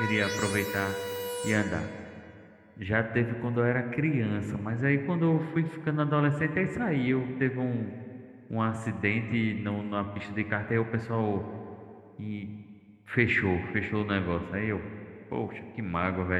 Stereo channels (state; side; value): identical; both; correlation 1.00